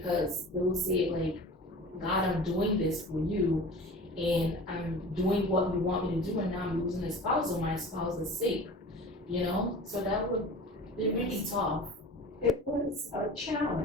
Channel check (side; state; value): both; normal; correlation 0.38